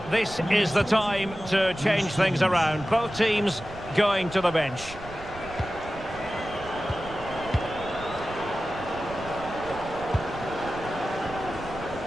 this is the time to change things around. Both teams going to the bench.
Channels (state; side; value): noise; right; rumble, 15 dB below the sound